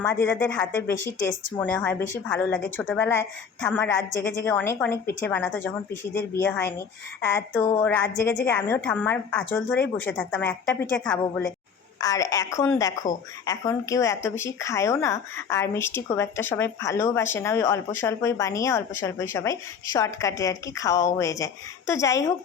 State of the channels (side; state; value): right; quieter; 6.4 dB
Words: দিদাদের হাতে বেশি টেস্ট মনে হয়, বেশি ভালো লাগে। ছোটোবেলায় ঠাম্মা রাত জেগে জেগে অনেক অনেক পিঠে বানাতো, যখন পিসিদের বিয়ে হয়নি। তো রাত জেগে জেগে আমিও ঠাম্মার আঁচল ধরেই বসে থাকতাম একটা পিঠে খাবো বলে। আর এখন দেখো, এখন কেউ এত বেশি খায়ও না, আর মিষ্টি খুব একটা সবাই ভালোবাসে না। ওই অল্প স্বল্পই বানিয়ে অল্প স্বল্পই সবাই শর্টকাটে আর কি খাওয়াও হয়ে যায়। তো যাই হোক,